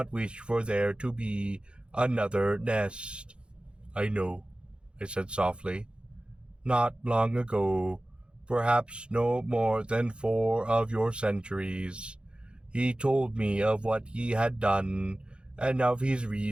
wish for there to be another nest. I know, I said softly. Not long ago, perhaps no more than 4 of your centuries, he told me of what he had done, and of his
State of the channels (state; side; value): late; left; 0.055 ms